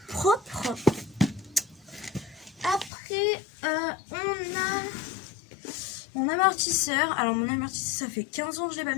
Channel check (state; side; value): drops out; right; at 2.9 s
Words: propre. Après, on a mon amortisseur. Alors, mon amortisseur, ça fait 15 ans que je l'ai pas